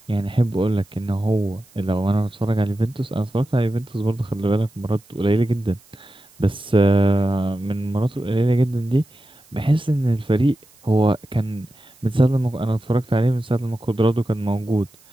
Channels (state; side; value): noise; right; hiss, 28 dB below the sound